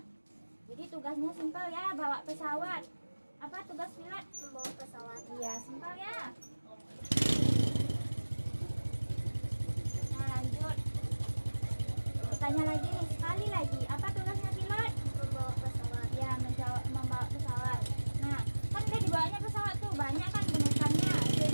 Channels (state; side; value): inverted; both; correlation -1.00